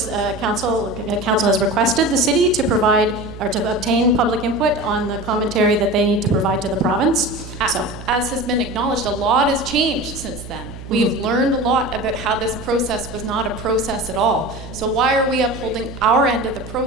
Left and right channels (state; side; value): noise; right; hum, 13 dB below the sound